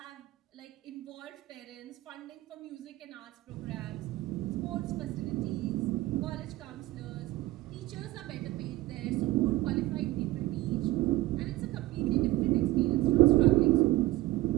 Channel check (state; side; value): quieter; left; 17.8 dB